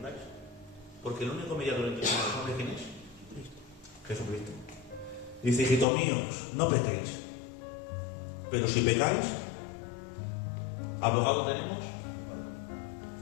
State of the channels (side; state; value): right; drops out; at 5.9 s